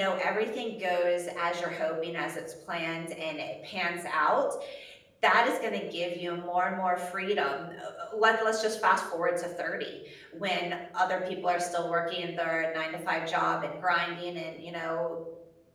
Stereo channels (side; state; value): both; identical; correlation 1.00